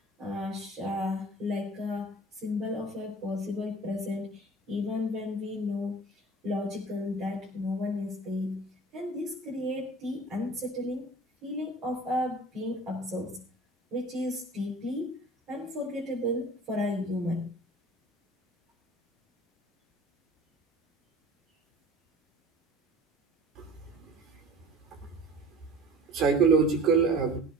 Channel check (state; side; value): normal; both; correlation 0.43